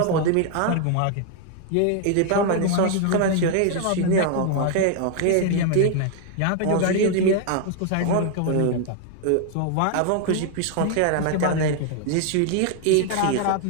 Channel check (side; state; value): both; different; correlation 0.00